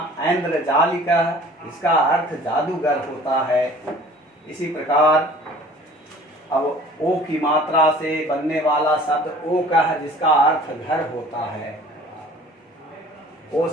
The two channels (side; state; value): both; normal; correlation 0.48